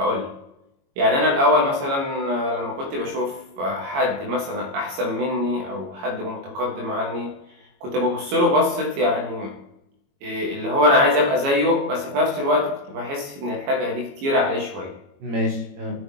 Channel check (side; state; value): left; late; 22 ms